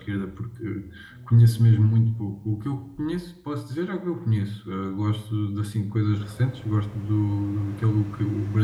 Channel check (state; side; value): identical; both; correlation 1.00